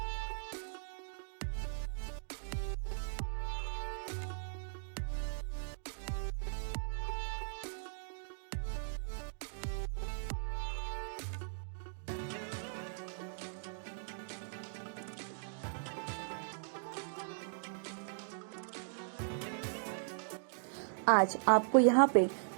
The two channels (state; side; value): silent; left; digital silence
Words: आज आपको यहाँ पे